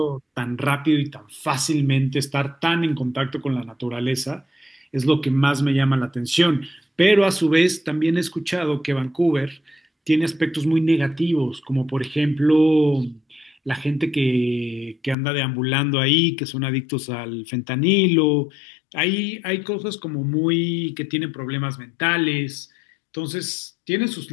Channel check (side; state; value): right; drops out; at 15.2 s